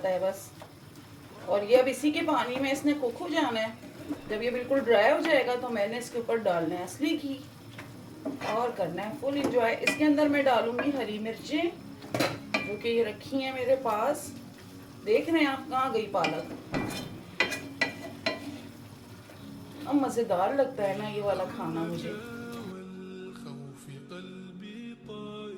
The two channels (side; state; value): both; identical; correlation 1.00